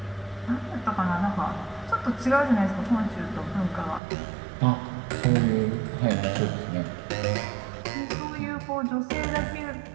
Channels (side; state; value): left; drops out; at 4.0 s